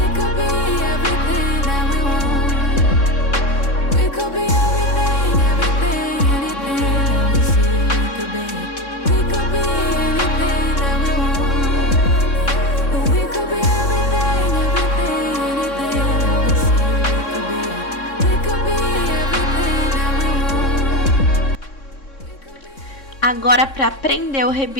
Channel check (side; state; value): right; late; 3.6 ms